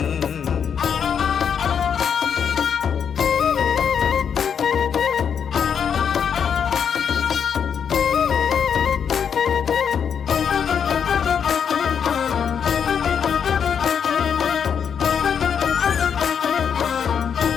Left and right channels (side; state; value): right; quieter; 7.5 dB